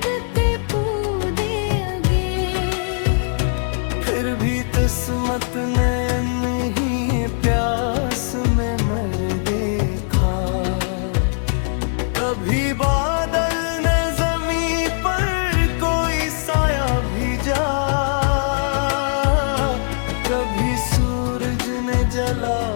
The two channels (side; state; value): right; silent; digital silence